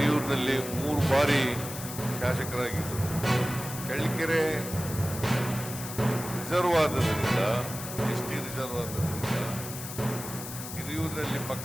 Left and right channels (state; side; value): noise; left; hiss, 9 dB below the sound